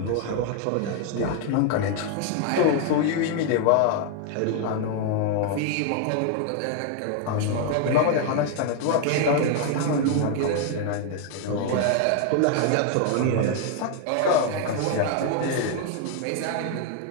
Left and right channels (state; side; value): different; both; correlation 0.00